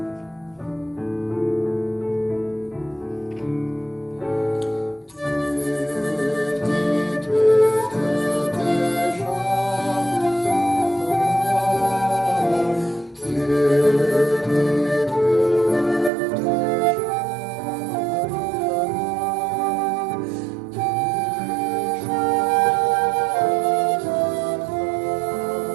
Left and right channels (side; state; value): left; drops out; at 16.1 s